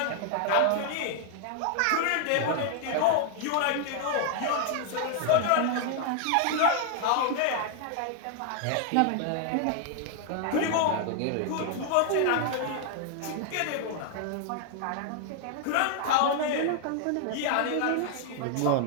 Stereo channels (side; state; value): both; different; correlation 0.00